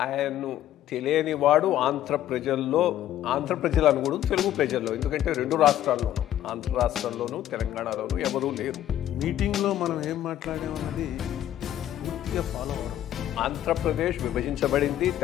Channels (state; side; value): quieter; right; 12.2 dB